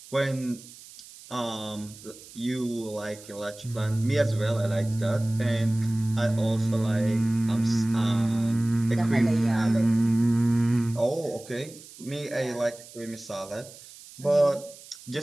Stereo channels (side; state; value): right; noise; hiss, 19 dB below the sound